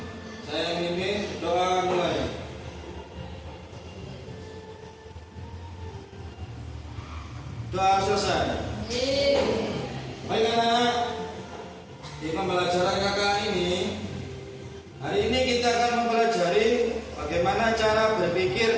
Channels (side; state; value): both; identical; correlation 1.00